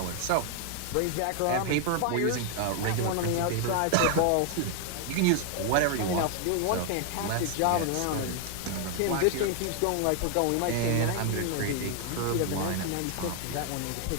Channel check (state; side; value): different; both; correlation 0.00